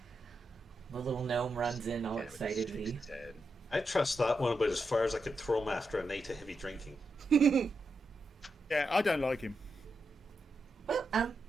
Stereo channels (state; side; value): normal; both; correlation 0.86